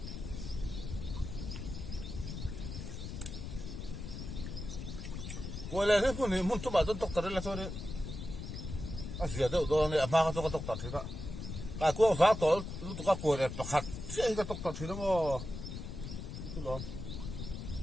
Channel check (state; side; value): noise; left; rumble, 7 dB below the sound